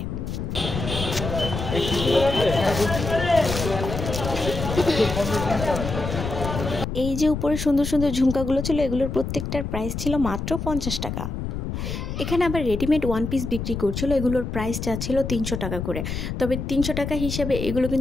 এই যে উপরে সুন্দর সুন্দর ঝুমকাগুলো ছিল এগুলোর প্রত্যেকটার প্রাইস ছিল মাত্র 50 টাকা। এখানে আবার রেডিমেড ওয়ান পিস বিক্রি করছিল। এগুলোর প্রাইস চাচ্ছিল 300 টাকা করে। তবে 300 টাকা হিসেবে এগুলো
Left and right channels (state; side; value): noise; left; rumble, 5 dB below the sound